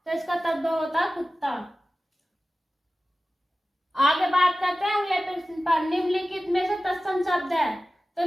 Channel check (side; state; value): both; normal; correlation 0.96